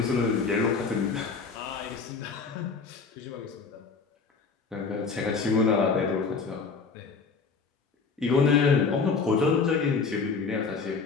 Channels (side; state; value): right; quieter; 4.9 dB